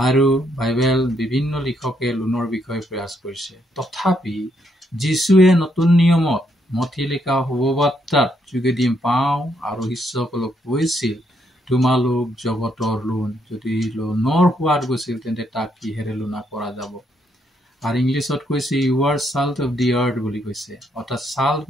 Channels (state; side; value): normal; both; correlation 0.75